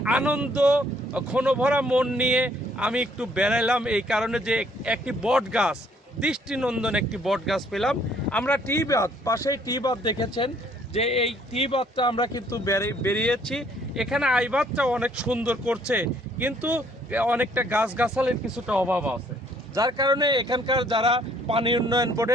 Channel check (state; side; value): normal; both; correlation 0.63